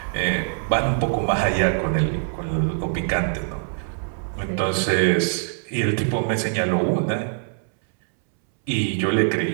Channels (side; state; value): left; silent; 63 dB below the other